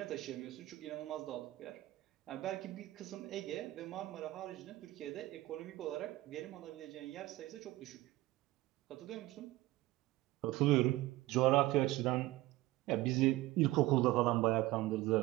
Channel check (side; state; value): left; quieter; 17.7 dB